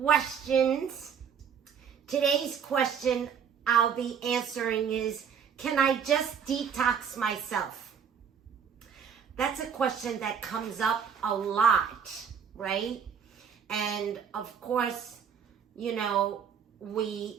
Today's question I'll be answering is, can I just detox myself? That's a question that comes up a lot, right? And of course, you know,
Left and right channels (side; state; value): left; quieter; 7.3 dB